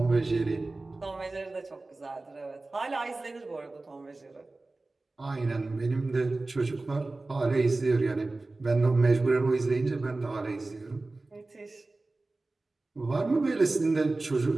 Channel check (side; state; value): left; quieter; 3.2 dB